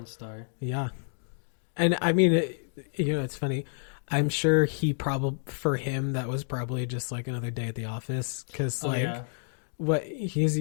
star. Yeah. And I mean, it's funny. I'm sure for him, that was probably just like another day at the office. Cause what he's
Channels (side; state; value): right; silent; digital silence